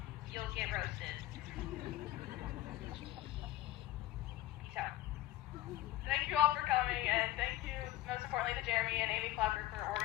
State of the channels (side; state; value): right; quieter; 15.0 dB